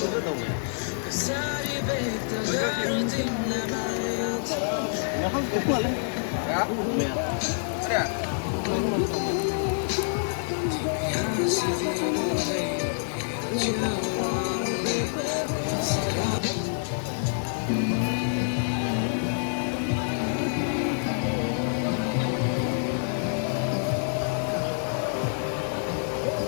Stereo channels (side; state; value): right; silent; 60 dB below the other